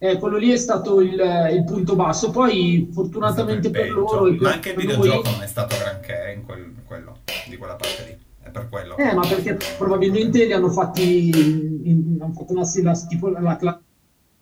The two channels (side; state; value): both; identical; correlation 1.00